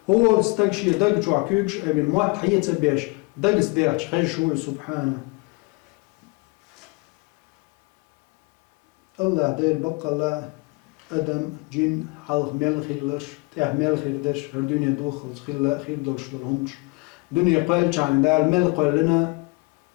هو استكشي دق جوا كيكش أبي الموت حيت بيش دقس دخش خشوي سبحانه الله دير بقى الله أدم جن حلق ميل خيلش ميل خيردش هالدنيا دوخل خير دولش دولهمش دنيا قال عن دال ميل قال لنا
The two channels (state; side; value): quieter; right; 28.5 dB